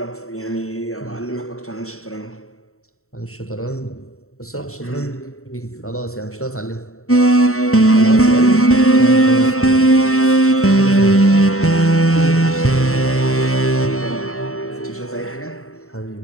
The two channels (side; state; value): right; late; 0.63 ms